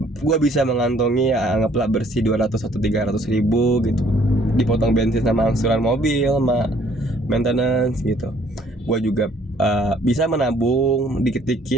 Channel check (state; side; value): normal; both; correlation 0.61